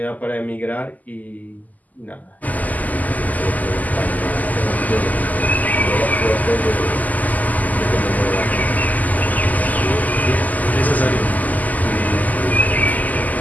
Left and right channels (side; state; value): right; late; 0.080 ms